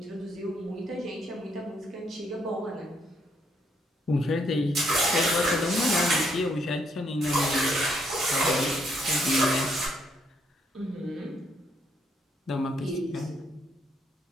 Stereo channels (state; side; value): normal; both; correlation 0.72